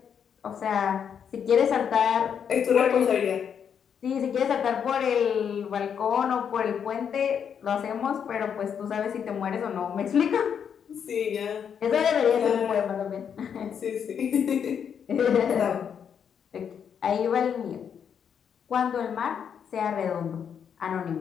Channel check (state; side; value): quieter; right; 7.7 dB